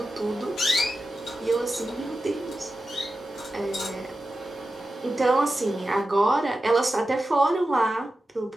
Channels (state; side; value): normal; both; correlation 0.91